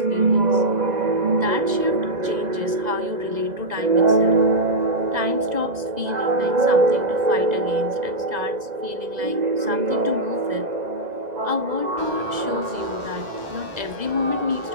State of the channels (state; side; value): late; left; 2.0 ms